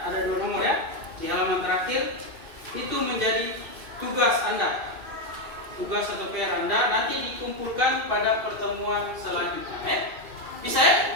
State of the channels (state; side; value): late; left; 2.7 ms